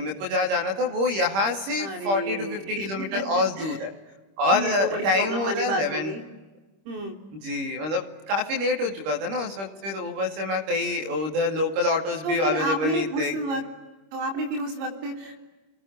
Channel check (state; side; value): late; left; 26 ms